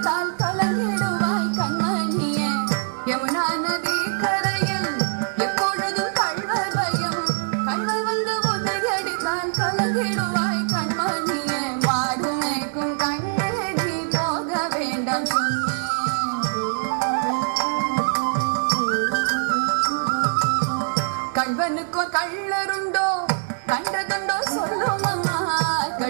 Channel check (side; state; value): left; silent; digital silence